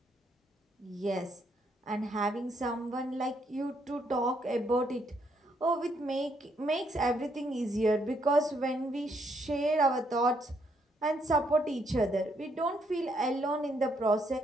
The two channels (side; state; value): both; normal; correlation 0.73